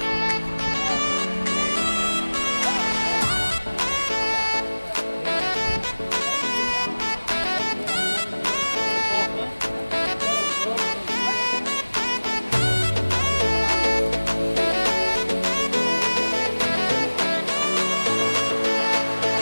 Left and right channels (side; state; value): both; inverted; correlation -1.00